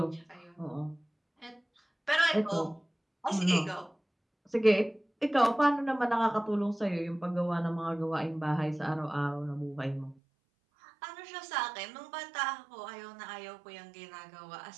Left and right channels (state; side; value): drops out; left; at 10.2 s